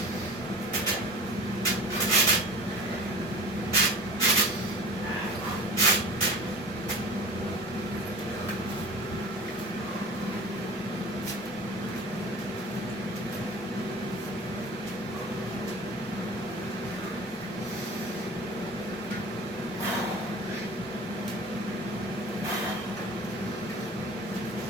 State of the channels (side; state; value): both; normal; correlation 0.37